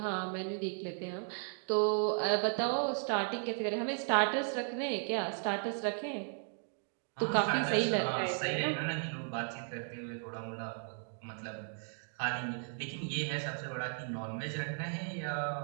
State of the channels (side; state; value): left; silent; 54 dB below the other